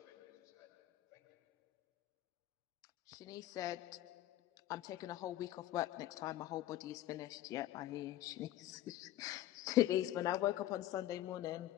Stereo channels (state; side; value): quieter; right; 14.2 dB